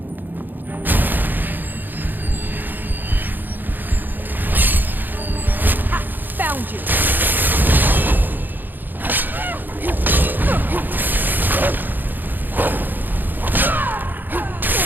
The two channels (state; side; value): late; left; 0.089 ms